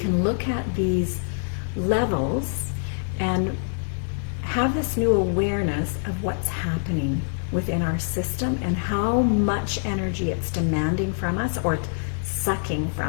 look at these levels and have this new awareness of what's happening within our system and how much energy it's demanding from us or sucking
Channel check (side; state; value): right; silent; 58 dB below the other